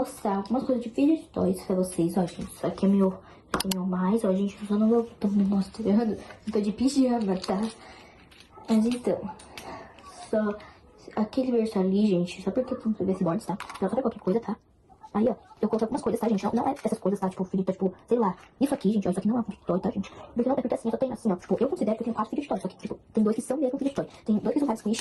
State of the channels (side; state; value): both; identical; correlation 1.00